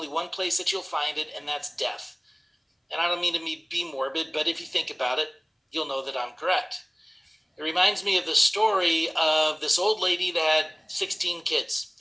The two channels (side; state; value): both; identical; correlation 1.00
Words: one place that you'll find it, and that's death. And I don't mean to be morbid, but if you think about it, you'll know that I'm correct. It reminds me of the story of this old lady that had 16 kids.